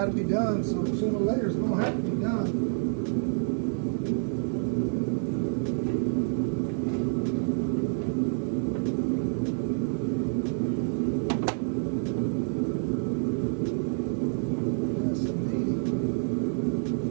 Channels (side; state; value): left; silent; 59 dB below the other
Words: to be done, so sooner or later it's going to have to be done.